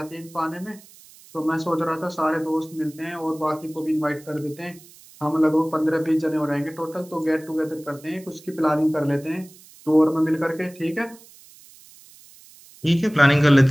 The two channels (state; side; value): noise; right; hiss, 23 dB below the sound